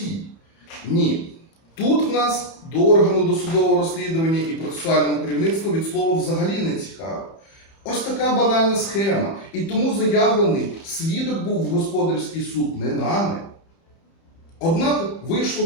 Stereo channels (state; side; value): late; right; 30 ms